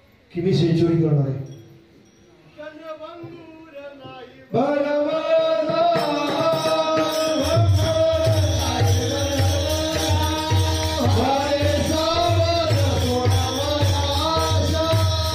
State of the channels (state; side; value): identical; both; correlation 1.00